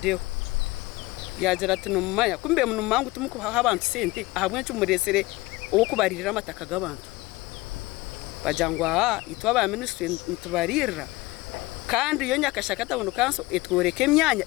deo yagira ati numaya kumbe munumangu tumukuha abantu sente ahamwe cyumuresere uwo kubaririra amataka gabantu bajangwa itwa ba ministry ntubarira kandi iyo nyakashaka tabuno kanso etworeke myanya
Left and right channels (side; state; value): right; quieter; 20.7 dB